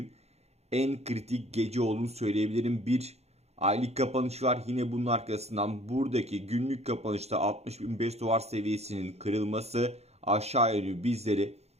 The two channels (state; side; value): late; left; 0.31 ms